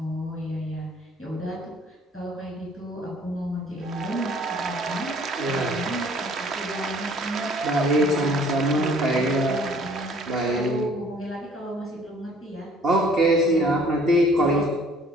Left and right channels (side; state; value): both; normal; correlation 0.56